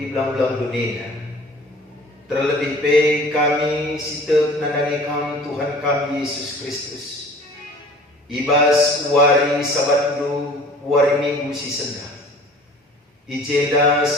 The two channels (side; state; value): both; normal; correlation 0.47